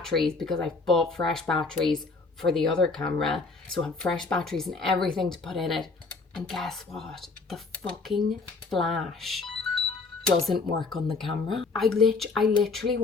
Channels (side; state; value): right; quieter; 4.0 dB